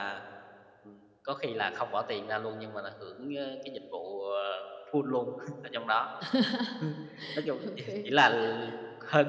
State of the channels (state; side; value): identical; both; correlation 1.00